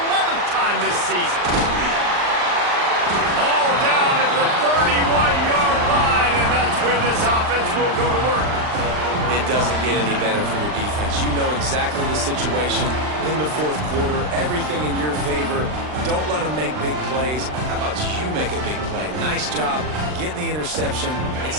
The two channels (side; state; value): left; late; 39 ms